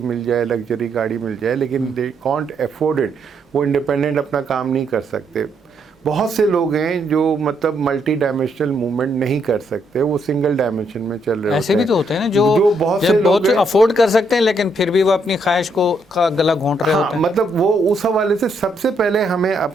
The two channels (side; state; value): both; normal; correlation 0.75